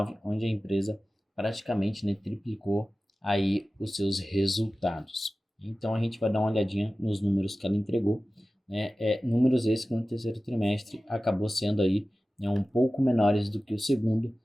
onde a empresa praticamente triplicou aí os seus resultados. Então a gente vai dar uma olhadinha nos números que ela entregou, números esses que no terceiro trimestre acabou sendo aí um pouco menores do que o segundo,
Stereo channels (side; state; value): both; normal; correlation 0.96